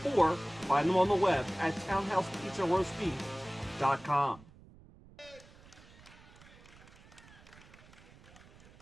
or find them on the web at townhousepizzaroastbeef.com.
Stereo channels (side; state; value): right; noise; rumble, 23 dB below the sound